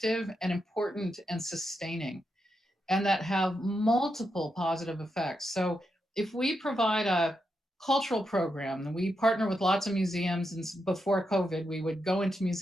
and important and sustaining and that have multiple positive effects. So if we provide a cultural program, and we partner with lots of museums, and before COVID, we would go into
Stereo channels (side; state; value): both; normal; correlation 0.85